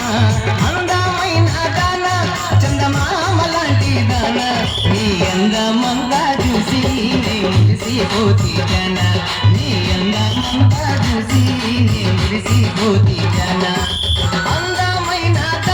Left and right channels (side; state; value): both; identical; correlation 1.00